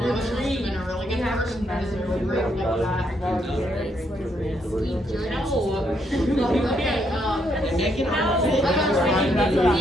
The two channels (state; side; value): normal; both; correlation 0.75